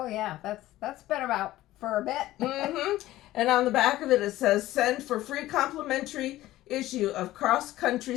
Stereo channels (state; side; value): quieter; right; 15.8 dB